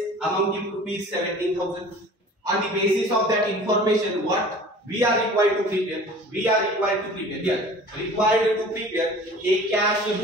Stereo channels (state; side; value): normal; both; correlation 0.44